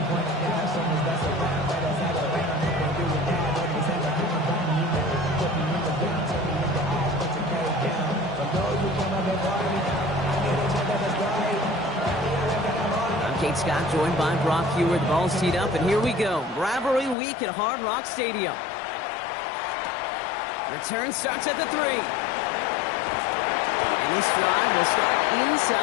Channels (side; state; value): right; drops out; at 17.2 s